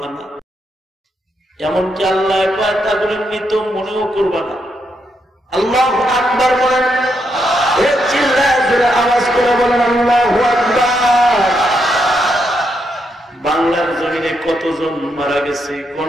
না এমনকি আল্লাহ কয় তারপরে মৃত মনেও করবা না আল্লাহু আকবার বলেন চিল্লায় জোরে আওয়াজ করে বলেন আল্লাহু আকবার বাংলার জমিনে কতজন মারা গেছে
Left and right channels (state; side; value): normal; both; correlation 0.80